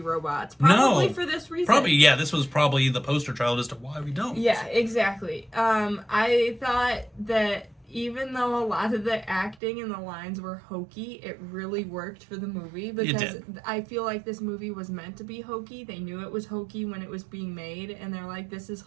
robots. Probably for this reason. This was probably the poster child as to why we don't. Yeah, exactly. I thought that even though a lot of the acting and the lines were hokey, it really worked for the movie because I feel like this movie was meant to be hokey. They knew it was hokey when it was being made, and they're like, this is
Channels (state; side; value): drops out; left; at 9.6 s